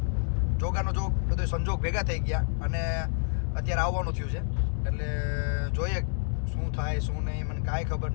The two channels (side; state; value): right; silent; 59 dB below the other